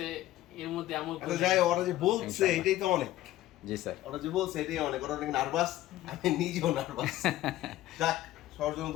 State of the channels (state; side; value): quieter; right; 14.8 dB